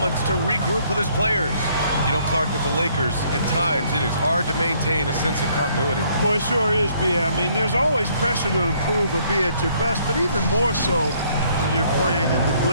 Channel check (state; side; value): inverted; both; correlation -0.65